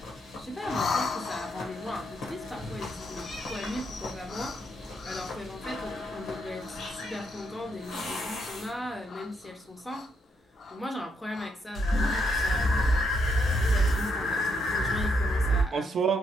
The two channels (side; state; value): both; normal; correlation 0.76